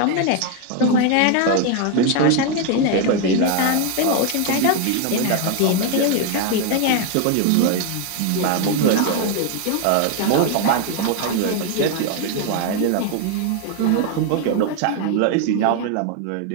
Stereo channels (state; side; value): different; both; correlation 0.01